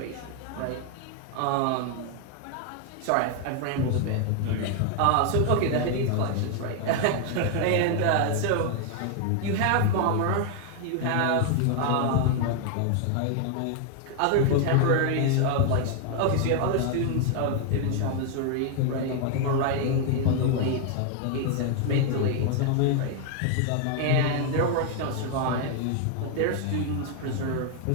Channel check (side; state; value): both; different; correlation 0.00